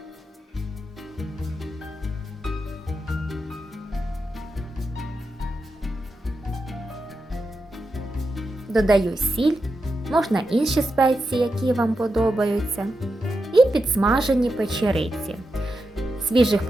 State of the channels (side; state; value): both; normal; correlation 0.88